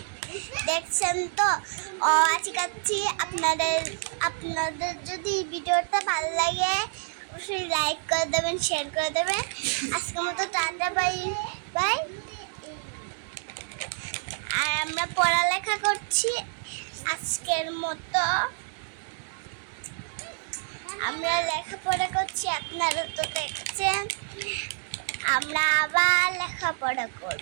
দেখছেন তো শেখাচ্ছি। আপনাদের যদি ভিডিওটা ভালো লাগে অবশ্যই লাইক করে দেবেন, শেয়ার করে দেবেন। আজকের মতো টাটা, বাই বাই। আর আমরা পড়ালেখা করছি আজকের মতো, আমরা লেখাপড়া করছি, আপনারা তো দেখছেন। আমরা আবার লেখাপড়া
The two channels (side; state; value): left; silent; digital silence